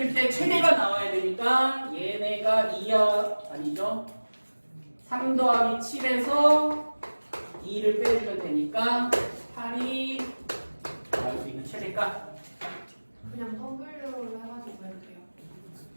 때 최대가 나와야 되니까 얘네가 2야 아니죠? 3 더하기 7에서 2를 빼주면 되니까 8이 나올 수 있는 최대가 그냥 W로 해가지고 할게요.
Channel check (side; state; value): both; inverted; correlation -1.00